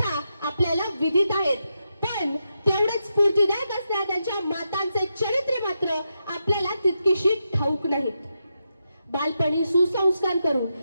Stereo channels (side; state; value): both; inverted; correlation -0.86